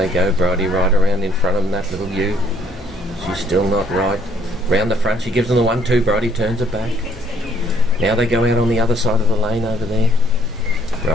go, Bridie right around in front of them, that little ewe. She's still not right. Round the front, she gives them the 1-2, Bridie turns her back. Now they go out on the other side of the lane over there.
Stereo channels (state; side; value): normal; both; correlation 0.64